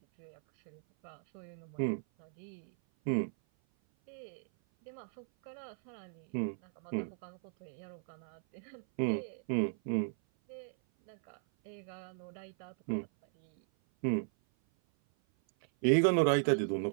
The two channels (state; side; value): silent; left; 54 dB below the other